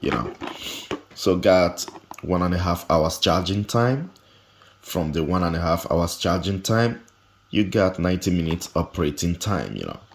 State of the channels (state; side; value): identical; both; correlation 1.00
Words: So got 1.5 hours charging time. From the 1.5 hours charging time, you got 90 minutes operating time,